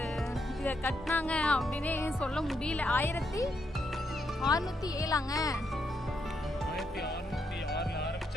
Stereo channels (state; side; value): normal; both; correlation 0.79